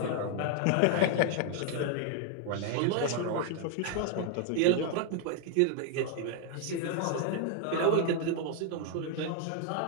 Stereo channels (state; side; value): different; both; correlation 0.00